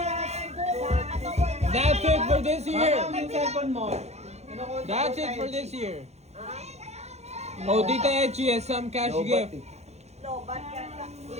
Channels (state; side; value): late; left; 0.31 ms